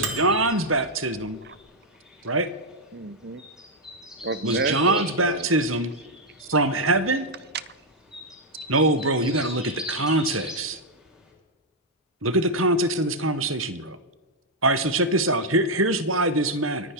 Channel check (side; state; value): both; normal; correlation -0.02